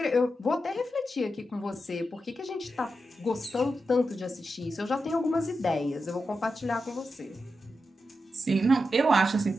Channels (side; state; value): both; normal; correlation 0.88